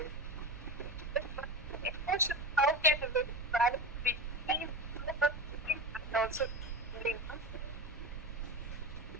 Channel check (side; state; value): both; normal; correlation 0.25